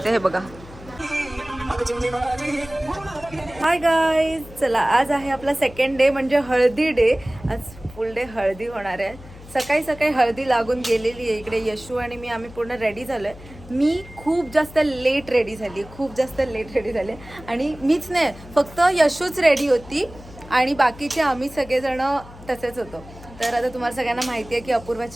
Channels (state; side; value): noise; left; hum, 18 dB below the sound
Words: हे बघा. हाय गाईज, चला आज आहे आपला सेकंड डे म्हणजे हळदी डे. आज फुल डे हळदी होणार आहे. सकाळी सकाळी हळदी लागून गेलेली आहे. इकडे यशू आणि मी आम्ही पूर्ण रेडी झालोय. मी खूप जास्त लेट रेडी झाली आणि मीच नाही, फक्त यशूच रेडी होती आणि बाकीचे आम्ही सगळेजण तसेच होतो. तर आता तुम्हाला सगळ्यांना माहिती आहे की